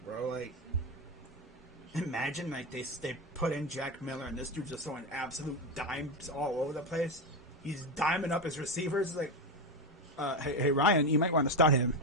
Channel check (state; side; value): normal; both; correlation 0.13